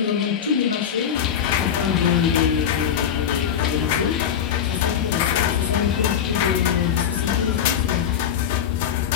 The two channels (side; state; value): right; quieter; 8.8 dB